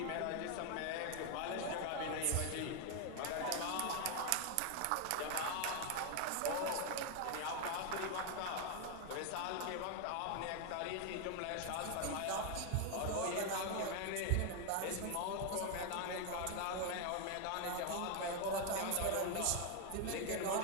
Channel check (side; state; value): both; different; correlation 0.01